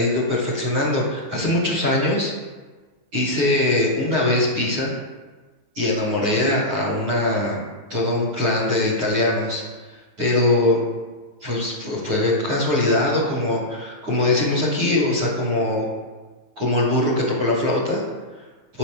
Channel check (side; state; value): left; late; 9.6 ms